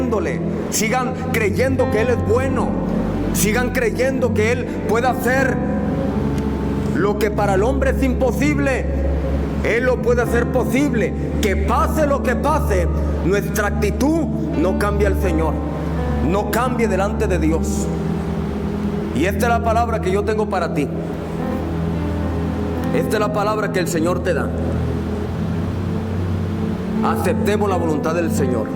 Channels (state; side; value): identical; both; correlation 1.00